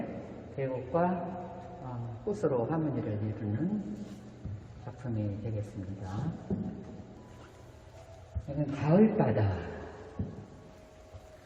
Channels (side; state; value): both; identical; correlation 1.00